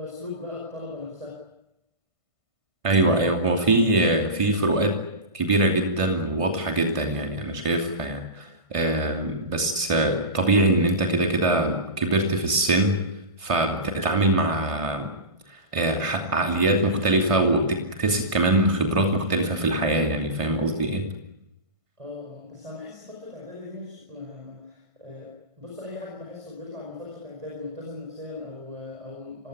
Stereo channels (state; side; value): late; left; 1.5 ms